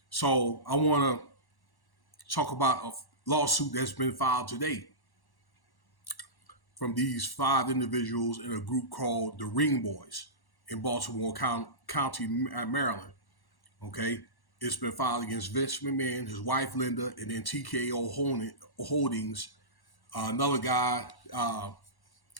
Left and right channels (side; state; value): right; late; 1.1 ms